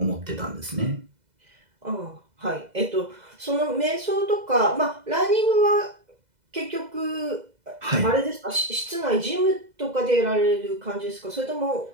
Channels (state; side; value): late; left; 2.0 ms